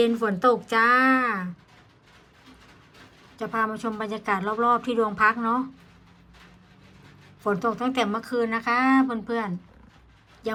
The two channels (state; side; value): identical; both; correlation 1.00